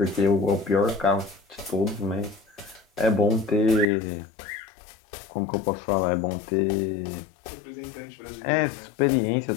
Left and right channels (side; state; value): right; drops out; at 3.9 s